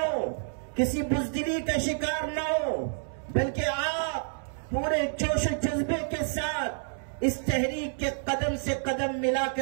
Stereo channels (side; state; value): left; silent; 59 dB below the other